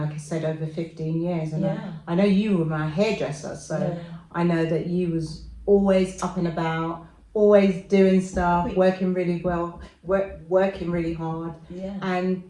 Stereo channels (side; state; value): both; identical; correlation 1.00